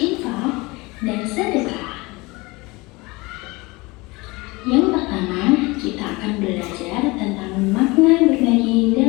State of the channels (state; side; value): quieter; right; 23.8 dB